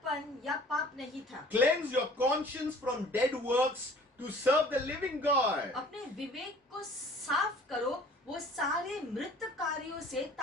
या पाप नहीं था। Cleanse your conscience from dead works to serve the living God. अपने विवेक को साफ करो वो सारे मृत कार्यों से,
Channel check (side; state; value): both; normal; correlation 0.50